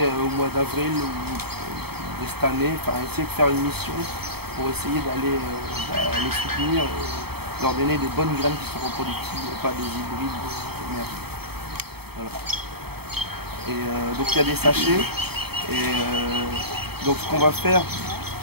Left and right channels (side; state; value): left; late; 0.96 ms